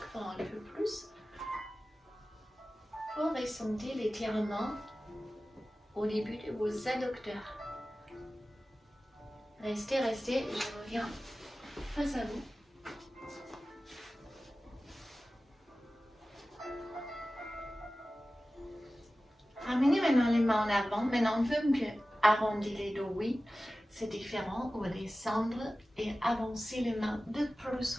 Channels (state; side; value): normal; both; correlation 0.96